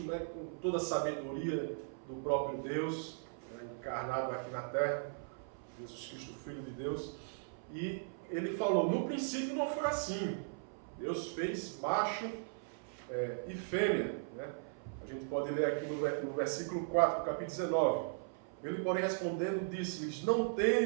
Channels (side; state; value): left; silent; 53 dB below the other